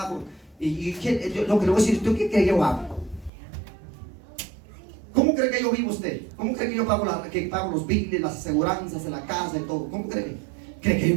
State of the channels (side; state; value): left; drops out; at 3.3 s